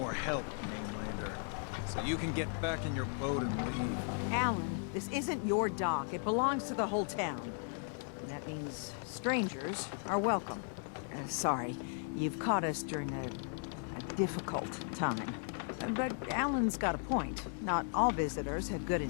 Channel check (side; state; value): right; silent; 53 dB below the other